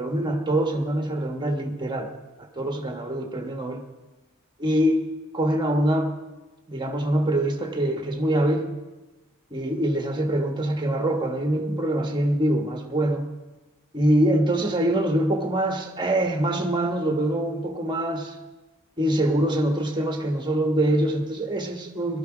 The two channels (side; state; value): both; normal; correlation 0.70